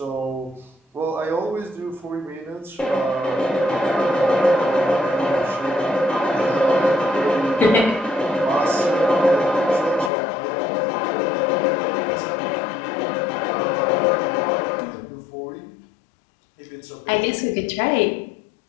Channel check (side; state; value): right; drops out; at 10.1 s